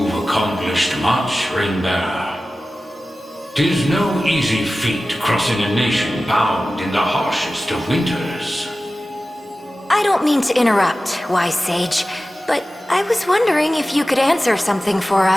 accomplished much, Ring-bearer. 'Tis no easy feat crossing a nation bound in the harshest of winters. I don't mean to interrupt, wise sage, but I was wondering if you could answer something for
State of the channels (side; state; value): both; normal; correlation 0.95